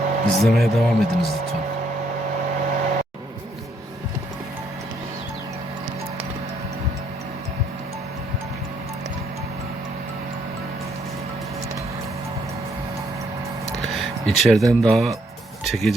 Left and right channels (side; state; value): both; normal; correlation 0.70